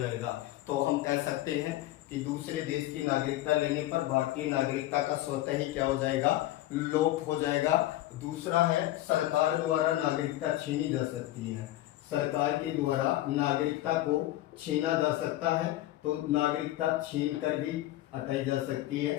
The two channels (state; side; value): quieter; right; 15.4 dB